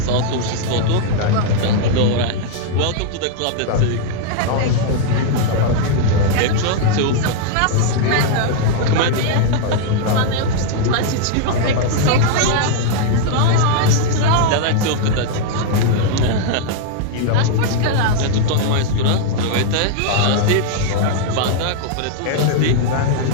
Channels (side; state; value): both; different; correlation -0.01